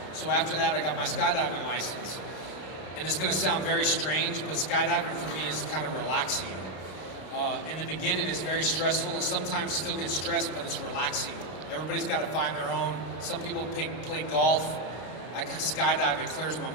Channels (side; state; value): right; late; 32 ms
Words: So after that, I got my skydiving license. And it's going to sound very strange, but skydiving for me is kind of relaxing. In the beginning, it's very stressful, and sometimes still get stressed, but it's relaxing. Everybody's got to find their own. Some people play golf. I skydive, it clears my